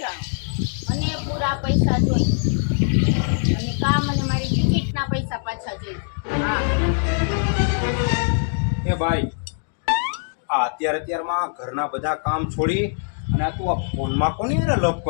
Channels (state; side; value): silent; right; digital silence